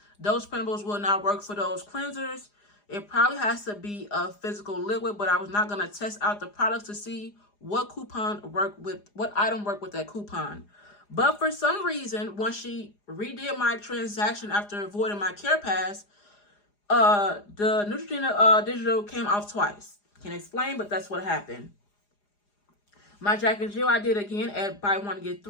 those printables will not work for those cleansers. It probably has to be a physical liquid, but I was not going to test out the products to see what item worked with that coupon. But for some reason, once she redid my transaction after avoiding my Care Pass, the Neutrogena digital came off twice. Can't explain, but that's what happened. My Jack and Jill I did again at buy 1 get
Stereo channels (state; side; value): late; right; 4.9 ms